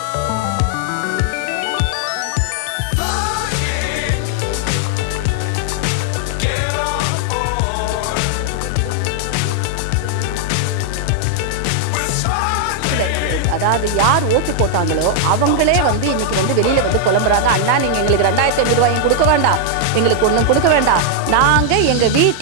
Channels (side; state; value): both; different; correlation 0.00